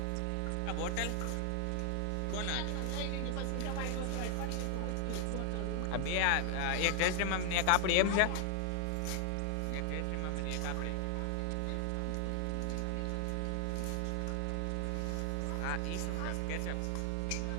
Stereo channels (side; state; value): both; different; correlation 0.00